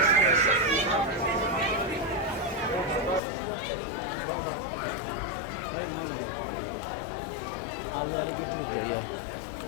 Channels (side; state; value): right; drops out; at 3.2 s